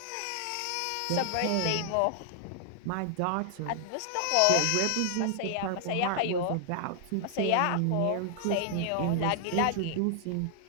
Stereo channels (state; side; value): different; both; correlation 0.00